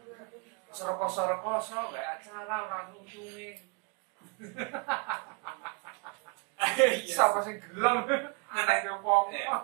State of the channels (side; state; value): left; quieter; 33.5 dB